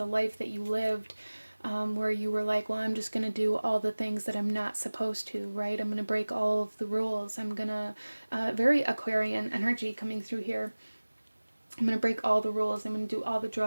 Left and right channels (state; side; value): inverted; both; correlation -1.00